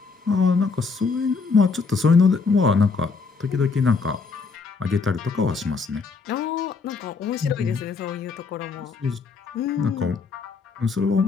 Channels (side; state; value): right; quieter; 4.7 dB